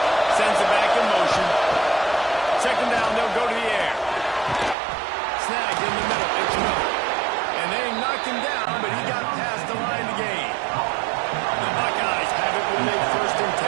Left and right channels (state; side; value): drops out; left; at 4.8 s